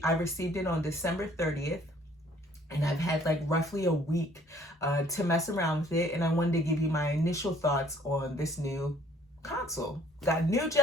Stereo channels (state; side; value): normal; both; correlation 0.59